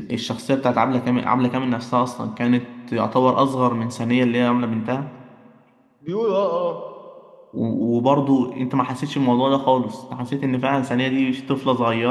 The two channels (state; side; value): identical; both; correlation 1.00